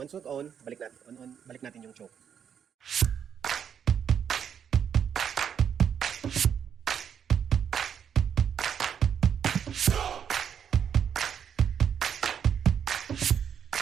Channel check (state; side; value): quieter; left; 8.1 dB